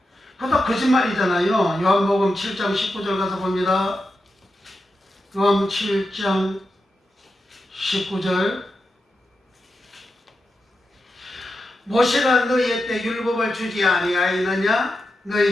그것도 거짓말이잖아요. 요한복음 7장 19절 가서 봅니다. 요한 7장 19절 모세가 너희에게 율법을 주지 아니하였느냐?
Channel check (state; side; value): normal; both; correlation 0.89